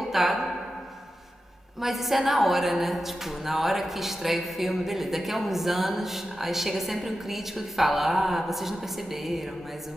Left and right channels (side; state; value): both; normal; correlation 0.91